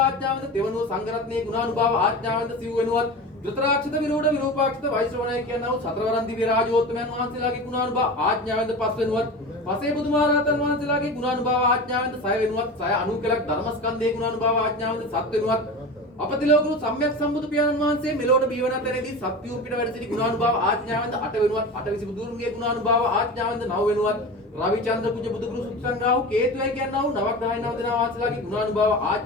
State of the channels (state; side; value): normal; both; correlation 0.30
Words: දෙවනුව සංඝ රත්නයේ ගුණානුභාව ආඥාවෙන්ද සිව් වෙනුවත් ධෘතරාක්ෂිත විරෝධ විරූපාක්ෂිත වෛශ්‍රවණය කියනවා සතරවරන් දිව්‍ය රාජෝත්තමයන් වහන්සේලාගේ ගුණානුභාව ආඥාවෙන්ද පස් වෙනුවත් පසේ බුදුමහරහතන් වහන්සේලාගේ ගුණානුභාව ආඥාවෙන්ද සය වෙනුවත් සය අනුකලක් ධර්මස්කන්ධයේ ගුණානුභාව ආඥාවෙන්ද සත් වෙනුවත් අපතිලෝකුරු සම්්‍යක් සම්බුදු පියාණන් වහන්සේ මෙලොවට බිහිවන තැනදී සත්‍යූ පිට වැඩ සිටි ගුණානුභාව ආඥාවෙන්ද අට වෙනුවත් අටවිසි බුදුරුන්ගේ ගුණානුභාව ආඥාවෙන්ද නව වෙනුවත් රවිචන්ද්‍ර කුජ බුදුගුරු සුත්සංගාව කේතුයි කියනවා නවග්‍රහය නව දෙනා වාසලාගේ ගුණානුභාව